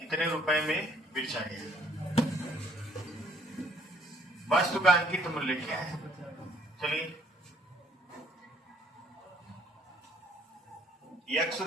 इतने रुपए में बेचा गया। वस्तु का अंकित मूल्य क्या है? चलिए, x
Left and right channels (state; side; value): normal; both; correlation 0.63